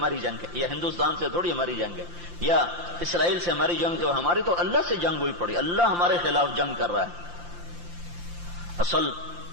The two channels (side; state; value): left; late; 5.8 ms